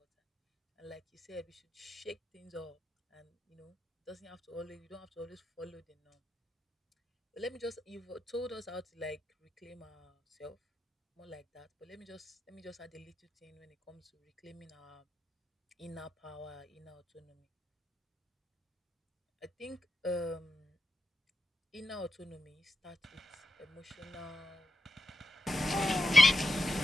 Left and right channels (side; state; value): both; normal; correlation 0.89